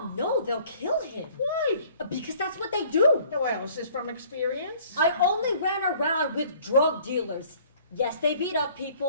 no, they'll kill him. Why? Because that's what they do. Well, is this from experience? I only ran around with drug dealers. Yes, they beat up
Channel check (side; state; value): both; inverted; correlation -0.55